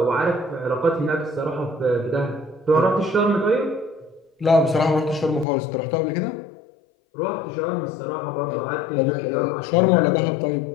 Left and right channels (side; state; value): right; drops out; at 5.5 s